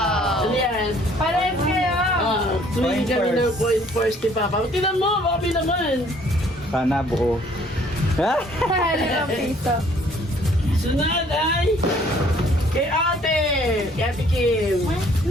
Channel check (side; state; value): both; normal; correlation 0.59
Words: Ano yan? Parehas kayo! Tuwing kami ng coin first ni Papa. Tingnan mo, baka naman. Sana buo. Ha? Limang piso. Sunod ay kay Ate! Kay Ate Kim.